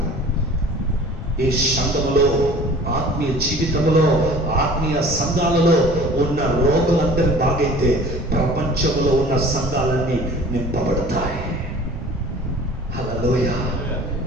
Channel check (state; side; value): normal; both; correlation 0.45